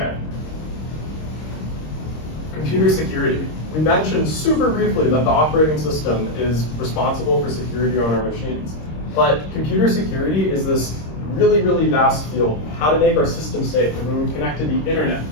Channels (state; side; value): late; right; 26 ms